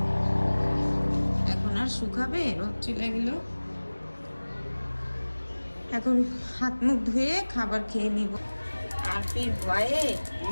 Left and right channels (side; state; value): both; inverted; correlation -1.00